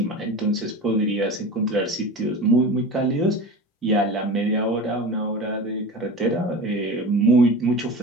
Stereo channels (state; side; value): normal; both; correlation 0.31